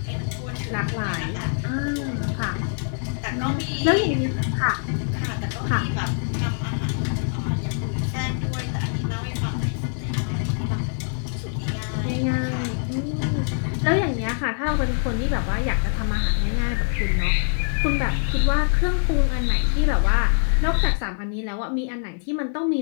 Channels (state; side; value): silent; right; 62 dB below the other